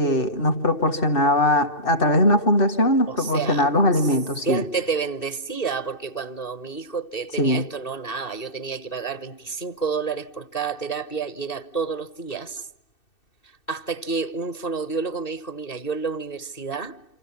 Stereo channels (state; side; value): late; right; 2.6 ms